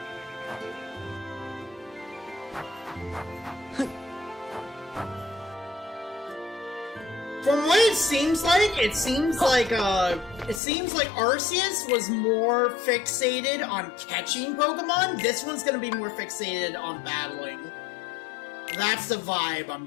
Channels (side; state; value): right; drops out; at 10.6 s